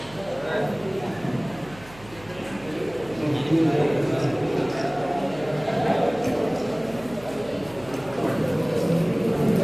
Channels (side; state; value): right; noise; hum, 20 dB below the sound